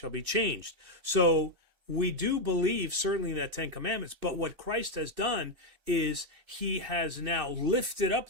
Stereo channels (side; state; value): left; late; 2.6 ms